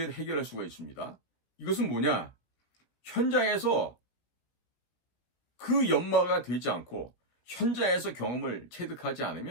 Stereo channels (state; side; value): late; right; 17 ms